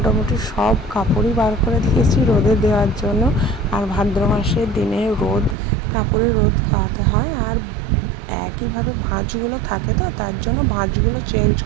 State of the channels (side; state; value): left; drops out; at 5.6 s